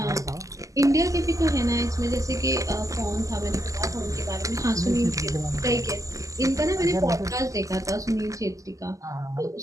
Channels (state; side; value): late; left; 0.16 ms